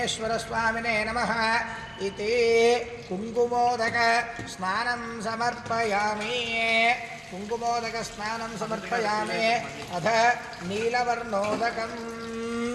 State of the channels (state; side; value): identical; both; correlation 1.00